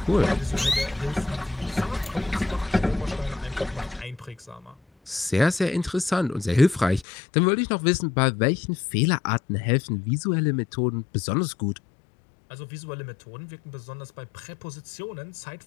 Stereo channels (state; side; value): drops out; right; at 7.1 s